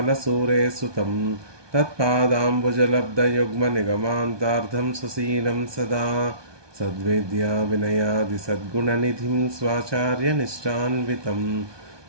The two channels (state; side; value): late; left; 1.2 ms